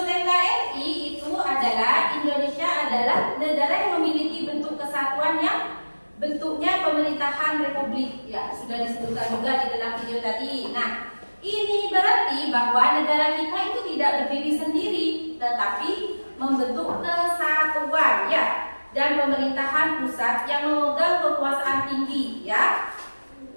NKRI itu adalah Indonesia adalah negara yang memiliki bentuk kesatuan yang bentuknya pemerintahan republik ya, sudah disebutkan juga di dalam video tadi. Nah, ini berarti bahwa negara kita itu tidak berdiri sendiri, tetapi membentuk kesatuan ya, dan pemerintahan pusat yang memegang kekuasaan tinggi ya.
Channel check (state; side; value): inverted; both; correlation -1.00